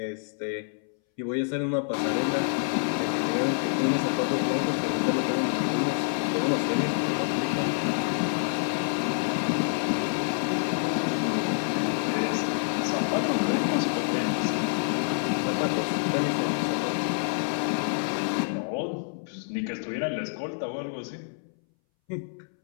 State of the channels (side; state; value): right; silent; 60 dB below the other